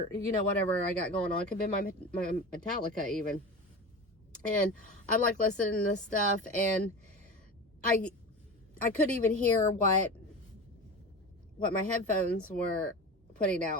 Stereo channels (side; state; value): both; normal; correlation 0.30